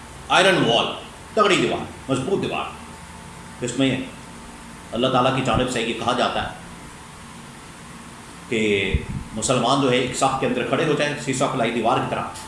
آئرن وال، تگڑی دیوار، مضبوط دیوار، اس میں اللہ تعالیٰ کی جانب سے یہ کہا جاتا ہے کہ مسلمان جو ہے ایک صف کے اندر کھڑے ہو جائیں، شیشہ پلائی دیوار کی طرح،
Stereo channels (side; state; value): both; identical; correlation 1.00